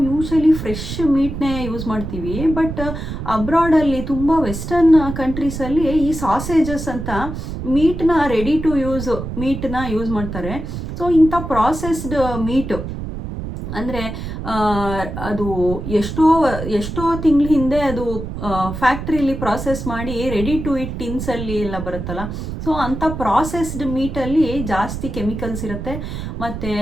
ಯೂಶಲಿ ಫ್ರೆಶ್ ಮೀಟ್ನೇ ಯೂಸ್ ಮಾಡ್ತೀವಿ. ಬಟ್ ಅಬ್ರಾಡಲ್ಲಿ ತುಂಬ ವೆಸ್ಟರ್ನ್ ಕಂಟ್ರೀಸಲ್ಲಿ ಈ ಸಾಸೇಜಸ್ ಅಂತ ಮೀಟ್ನ ರೆಡಿ ಟು ಯೂಸ್ ಮೀಟ್ನ ಯೂಸ್ ಮಾಡ್ತಾರೆ. ಸೊ ಇಂಥ ಪ್ರಾಸೆಸ್ಡ್ ಮೀಟು ಅಂದರೆ ಅದು ಎಷ್ಟೋ ತಿಂಗಳ ಹಿಂದೆ ಅದು ಫ್ಯಾಕ್ಟ್ರಿಲಿ ಪ್ರಾಸೆಸ್ ಮಾಡಿ ರೆಡಿ ಟು ಇಟ್ ಟಿನ್ಸಲ್ಲಿ ಎಲ್ಲ ಬರುತ್ತಲ್ಲ, ಸೊ ಅಂಥ ಪ್ರಾಸೆಸ್ಡ್ ಮೀಟಲ್ಲಿ ಜಾಸ್ತಿ ಕೆಮಿಕಲ್ಸ್ ಇರುತ್ತೆ. ಮತ್ತು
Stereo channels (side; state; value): right; noise; rumble, 7 dB below the sound